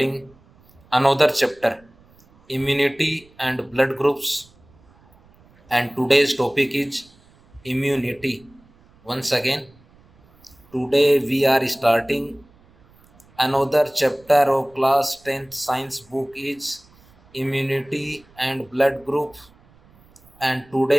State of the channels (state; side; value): noise; right; rumble, 29 dB below the sound